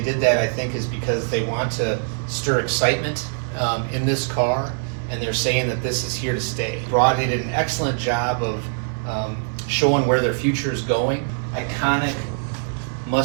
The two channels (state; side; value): silent; left; digital silence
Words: that, I think, is because they want to stir excitement in this car, and they're saying that this is here to stay. They did an excellent job of showing where their future is going. Iconic